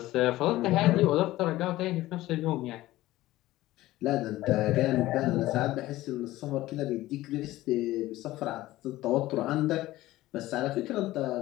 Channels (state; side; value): quieter; right; 16.6 dB